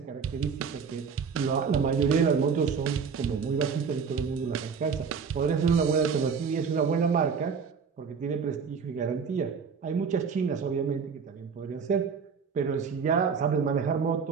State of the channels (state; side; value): quieter; left; 5.9 dB